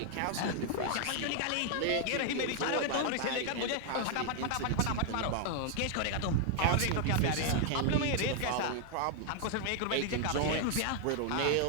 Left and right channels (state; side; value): different; both; correlation 0.00